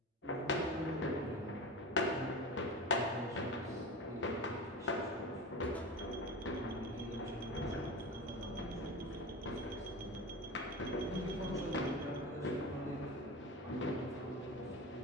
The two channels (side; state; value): both; normal; correlation 0.28